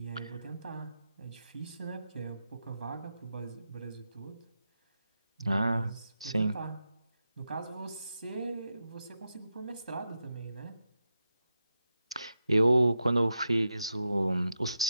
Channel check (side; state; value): both; inverted; correlation -0.87